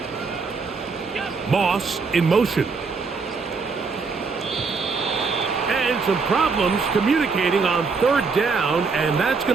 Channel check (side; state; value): left; quieter; 4.7 dB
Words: Moss in motion. And some problems communicating on 3rd down, and that's